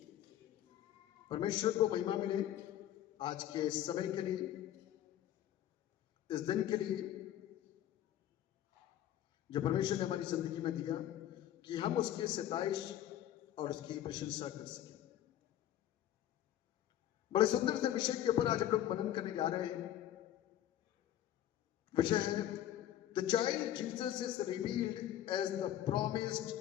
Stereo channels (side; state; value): right; quieter; 12.1 dB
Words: परमेश्वर को महिमा मिले आज के समय के लिए, इस दिन के लिए जो परमेश्वर ने हमारी जिंदगी में दिया कि हम उसकी सताइश और उसकी प्रशंसा कर सकें। बड़े सुंदर से विषय के ऊपर आज हम लोग मनन करने जा रहे हैं। विषय है The child Jesus is revealed as the promised